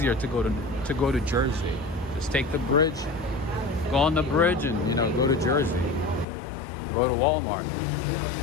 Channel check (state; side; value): drops out; right; at 6.2 s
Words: to go to Jersey. Just take the bridge, go on the bridge, and, you know, go to Jersey. Go to Walmart.